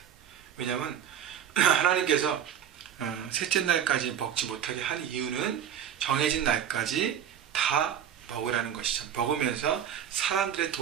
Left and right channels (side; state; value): left; quieter; 9.3 dB